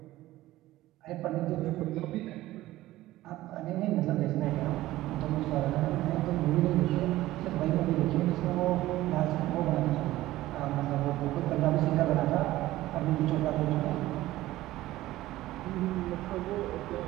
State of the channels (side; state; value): left; quieter; 16.2 dB